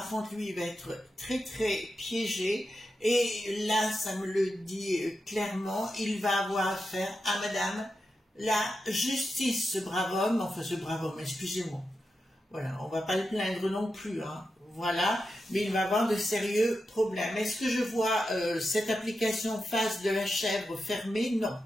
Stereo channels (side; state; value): both; normal; correlation 0.89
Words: contre, lui, il va être très, très piégé, et là, ça me le dit clairement, il va avoir affaire à madame la justice, ce brave homme, excusez-moi, voilà, on va pas le plaindre non plus, hein, voilà, mais il va avoir de sérieux problèmes. Est-ce que je vois cette application face de la chèvre fermée? Non.